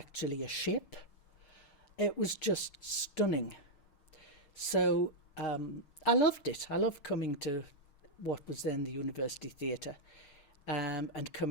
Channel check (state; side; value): late; right; 6.4 ms